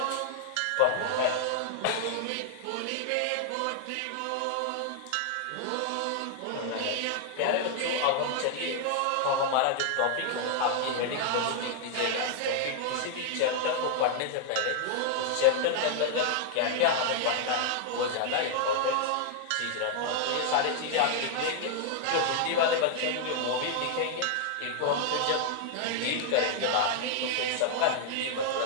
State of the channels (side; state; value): both; different; correlation 0.00